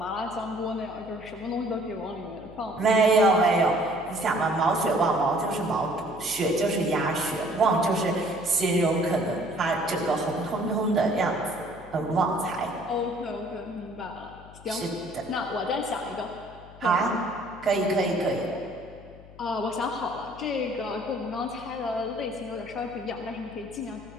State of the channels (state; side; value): noise; left; hum, 19 dB below the sound